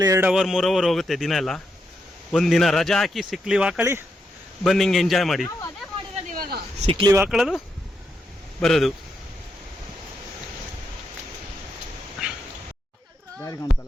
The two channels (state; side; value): normal; both; correlation 0.82